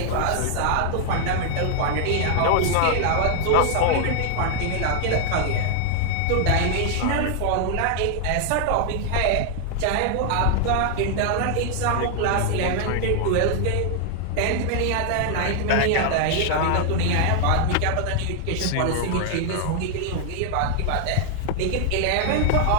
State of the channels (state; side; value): different; both; correlation 0.00